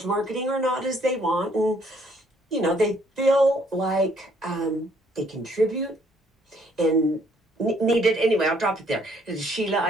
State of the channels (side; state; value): both; normal; correlation 0.65